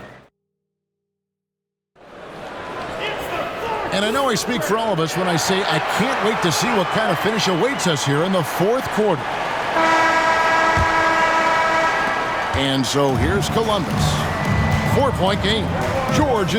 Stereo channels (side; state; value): both; identical; correlation 1.00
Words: And I know I speak for all of us when I say I can't wait to see what kind of finish awaits us here in the fourth quarter. And so here's Columbus. 4-point game. George